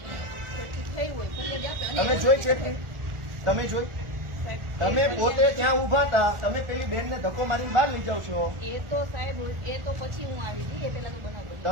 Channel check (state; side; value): late; left; 1.4 ms